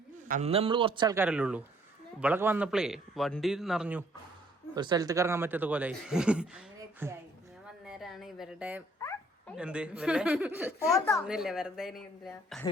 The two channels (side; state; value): both; normal; correlation 0.62